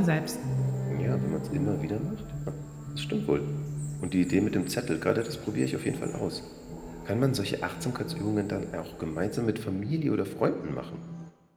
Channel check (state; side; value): identical; both; correlation 1.00